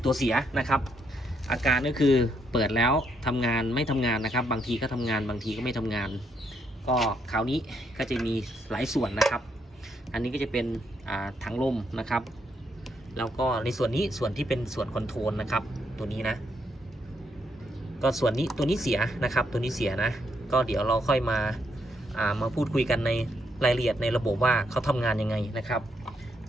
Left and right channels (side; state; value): both; normal; correlation 0.76